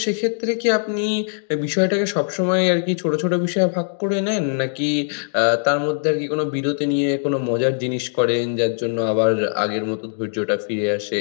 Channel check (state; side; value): silent; right; digital silence